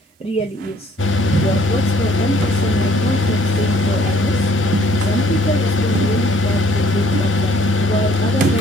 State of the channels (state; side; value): normal; both; correlation 0.61